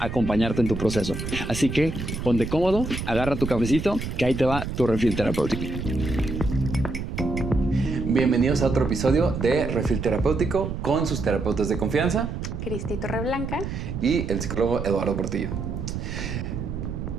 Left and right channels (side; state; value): right; noise; rumble, 5 dB below the sound